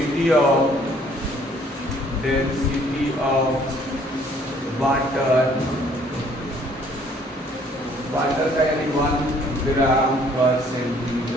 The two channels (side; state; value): both; normal; correlation 0.60